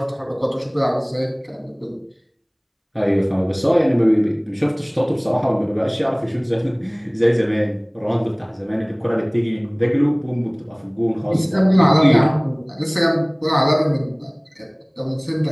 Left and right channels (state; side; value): identical; both; correlation 1.00